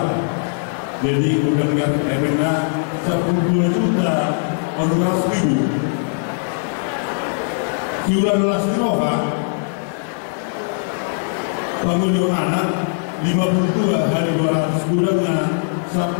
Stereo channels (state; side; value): silent; right; digital silence